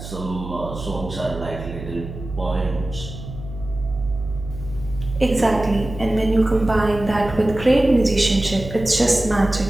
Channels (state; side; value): noise; right; hum, 11 dB below the sound